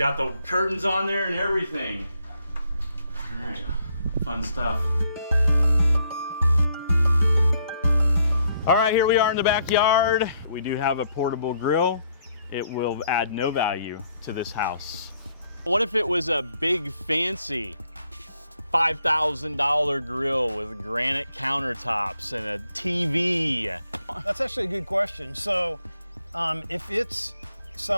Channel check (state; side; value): inverted; both; correlation -0.72